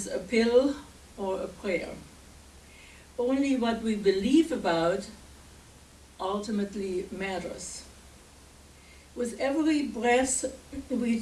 a pill or a prayer. Only what we believe about ultimately matters. With every breath we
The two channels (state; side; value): identical; both; correlation 1.00